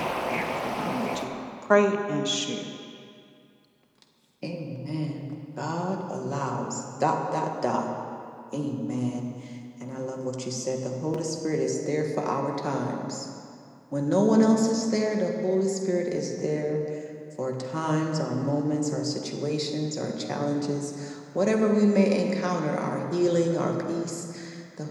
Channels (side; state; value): both; identical; correlation 1.00